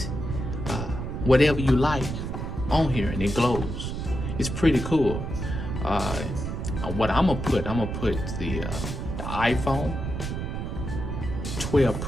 whatever you like on here and it glows. It's pretty cool. What I'm gonna put the iPhone 12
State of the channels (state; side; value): noise; right; rumble, 4 dB below the sound